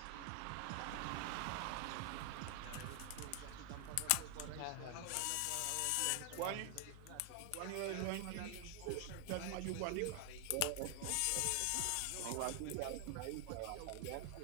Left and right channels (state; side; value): different; both; correlation 0.00